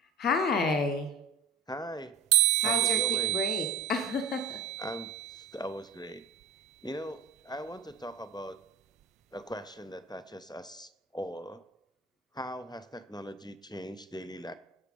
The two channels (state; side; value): quieter; left; 3.6 dB